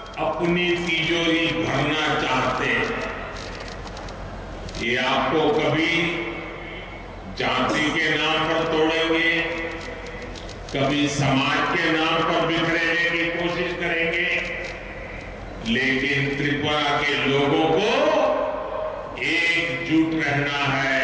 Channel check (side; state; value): both; identical; correlation 1.00